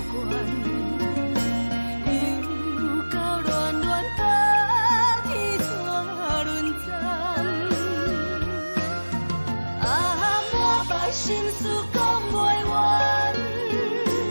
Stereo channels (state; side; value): inverted; both; correlation -1.00